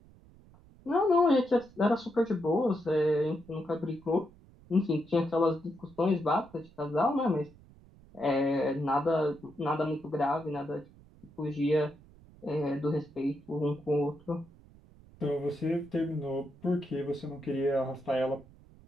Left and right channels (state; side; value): noise; right; rumble, 24 dB below the sound